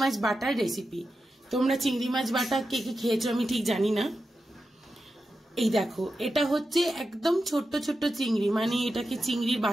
মাছ বাটার রেসিপি। তোমরা চিংড়ি মাছ বাটা কে কে খেয়েছো আমি ঠিক জানি না। এই দেখো, এটা হচ্ছে একদম ছোট্ট ছোট্ট চিংড়ি, মানে এটাকে চিংড়ির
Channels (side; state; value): both; normal; correlation 0.90